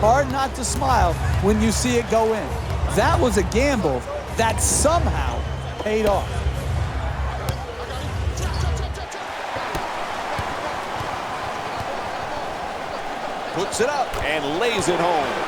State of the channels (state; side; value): identical; both; correlation 1.00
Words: not to smile when you see it go in. That was a gamble that somehow paid off. Puts it up and lays it